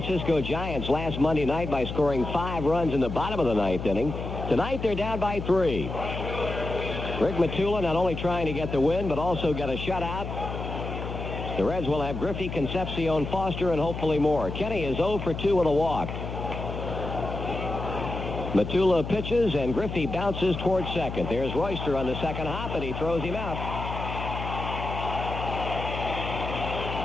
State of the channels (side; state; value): left; noise; hum, 6 dB below the sound